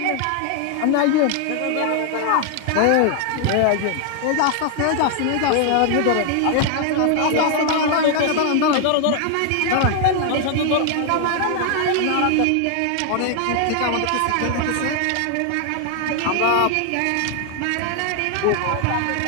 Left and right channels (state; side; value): different; both; correlation 0.00